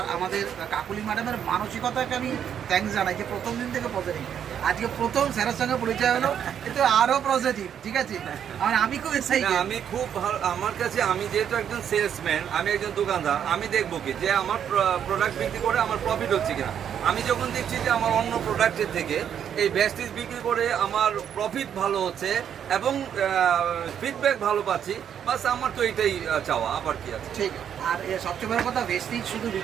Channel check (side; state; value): left; quieter; 8.8 dB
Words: আমাদের কাকুলি ম্যাডামের মানসিকতাকে আমি থ্যাঙ্কস জানাই যে প্রথম দিন থেকে পজিটিভ। আজকে প্রথম স্যারের সঙ্গে পরিচয় হলো, কিন্তু আরও পজিটিভ। ঠিক আছে, আমি খুব এক্সাইটেড। আমি খুব ভালো, আমার কাছে, আমি যেহেতু একজন সেলসম্যান, আমি একজন দোকানদার, আমি দেখবো কি যে আমার প্রোডাক্ট বিক্রি করে আমার প্রফিট হচ্ছে কিনা। আমি যখন দেখছি যে আমার অন্য প্রোডাক্টের থেকে এই ভেস্টিজ বিক্রি করে আমার প্রফিট ভালো হচ্ছে এবং ফিডব্যাক ভালো পাচ্ছি, বাস আমার তো এটাই চাওয়া, আবার কি আছে। ঠিক। আর সবচেয়ে বড় কথা, ভেস্টিজ শুধু